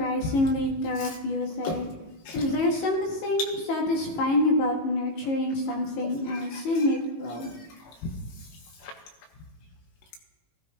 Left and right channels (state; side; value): late; right; 18 ms